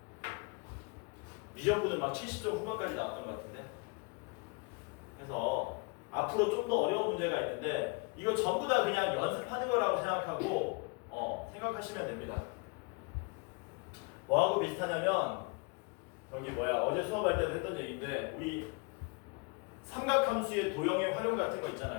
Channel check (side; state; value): right; quieter; 31.3 dB